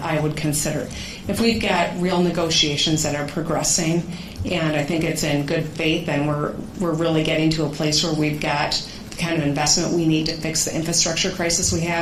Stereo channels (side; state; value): both; identical; correlation 1.00